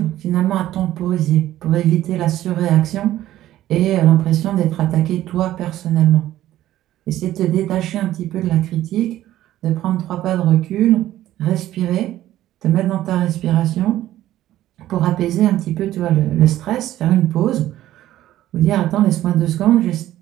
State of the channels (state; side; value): quieter; left; 13.8 dB